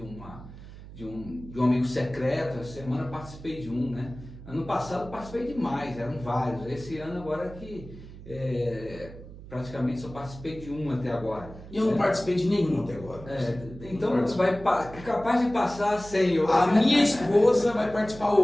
um amigo secreto. Essa semana eu participei de um, né? Ano passado participei de mais, eram vários. Esse ano agora que praticamente só participei de um até agora. E eu não participei de nenhum até agora. Então é capaz de passar sem. A minha esposa vai participar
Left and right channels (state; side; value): noise; right; hum, 15 dB below the sound